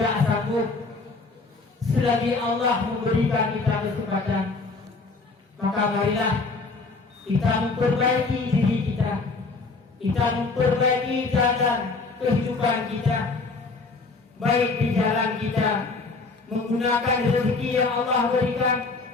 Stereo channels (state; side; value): quieter; right; 3.9 dB